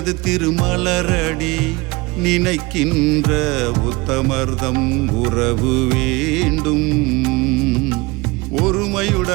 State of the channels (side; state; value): left; quieter; 23.7 dB